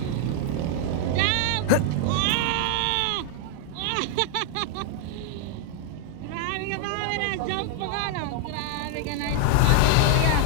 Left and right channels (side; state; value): both; different; correlation 0.00